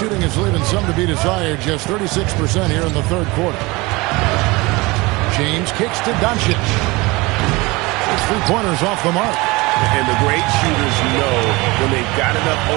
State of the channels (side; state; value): left; quieter; 23.4 dB